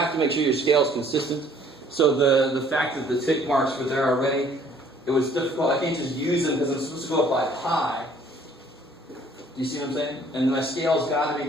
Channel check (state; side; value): normal; both; correlation 0.58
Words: to make sure your scale is consistent. So the fact that the tick marks were there already, it was difficult. I can't just use them because I'm supposed to go up by pi. Do you see what I'm saying? And my scale's got to